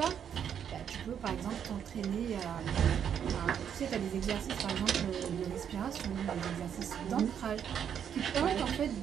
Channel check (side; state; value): left; quieter; 8.5 dB